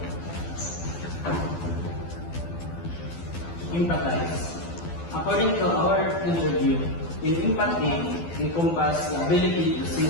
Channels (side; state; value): right; late; 12 ms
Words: Empathize. According to our interview, in empathy encompass the ability to